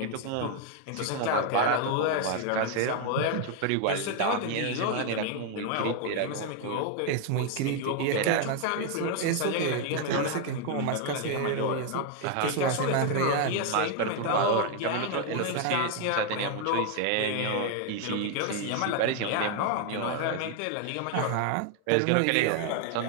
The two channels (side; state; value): both; different; correlation 0.00